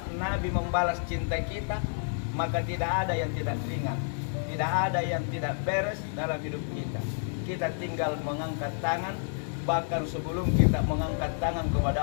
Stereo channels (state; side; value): silent; right; digital silence